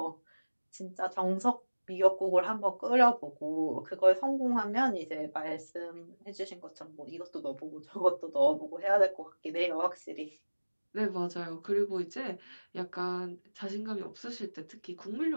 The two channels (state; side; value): inverted; both; correlation -1.00